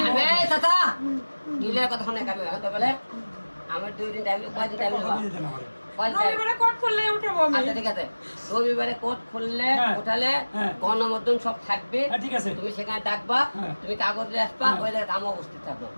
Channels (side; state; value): both; inverted; correlation -1.00